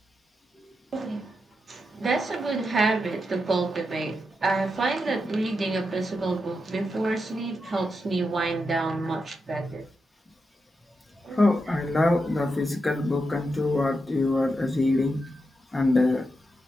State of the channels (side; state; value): both; normal; correlation 0.86